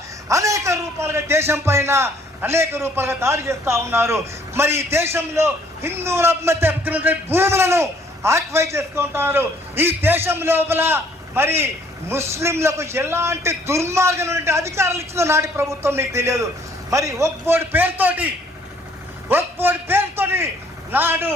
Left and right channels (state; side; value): normal; both; correlation 0.62